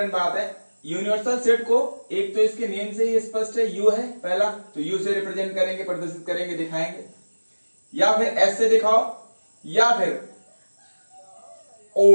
बात है, यूनिवर्सल सेट को एक तो इसके नेम से ही स्पष्ट है, यू है पहला, तो यू से रिप्रेजेंट करेंगे, प्रदर्शित करेंगे, दिखाएंगे, या फिर एस से दिखाओ या फिर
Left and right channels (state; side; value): inverted; both; correlation -1.00